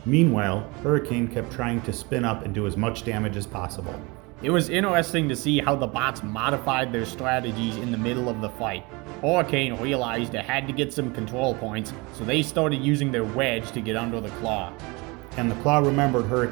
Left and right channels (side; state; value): left; quieter; 26.3 dB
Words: Meanwhile, Hurricane kept trying to spin up and do as much damage as possible. It was interesting to see how the bots modified their strategies in the middle of the fight. Hurricane realized it had to get some control points, so they started using their wedge to get under the claw. And the claw remembered